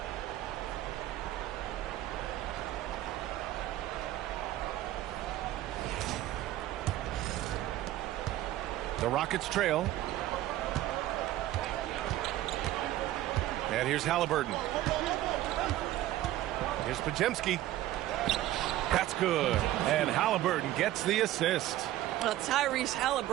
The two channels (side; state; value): left; quieter; 14.4 dB